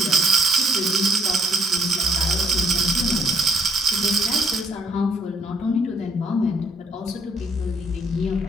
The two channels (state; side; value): normal; both; correlation 0.64